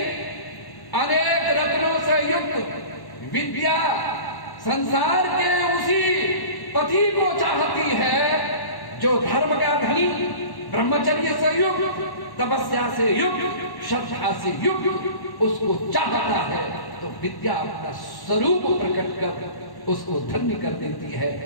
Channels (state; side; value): late; right; 1.1 ms